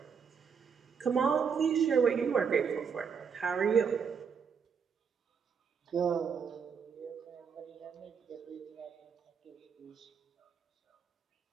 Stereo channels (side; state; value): left; quieter; 6.5 dB